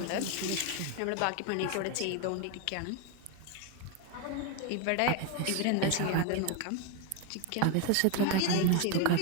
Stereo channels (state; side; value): different; both; correlation 0.01